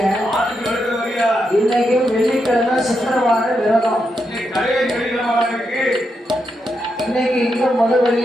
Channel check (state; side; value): normal; both; correlation 0.83